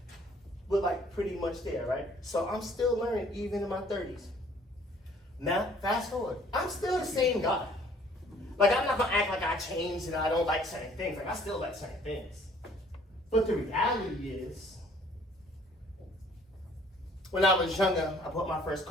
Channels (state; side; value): normal; both; correlation 0.58